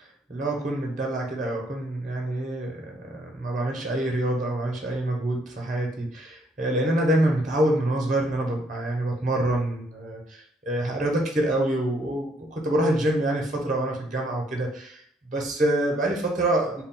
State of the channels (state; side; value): normal; both; correlation 0.68